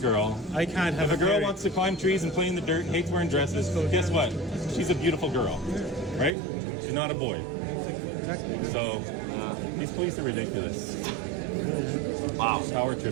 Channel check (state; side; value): drops out; left; at 6.3 s